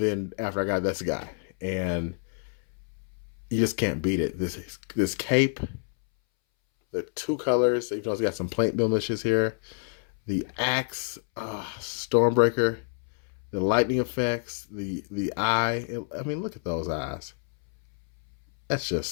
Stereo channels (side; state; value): right; silent; 59 dB below the other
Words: after I got this guy. And you just can't beat it. This cape, the 2 colors, even though it's got some paint blemishes here. The axe, Stormbreaker, The lightning effects, the eye. I mean, look at those eyes. That's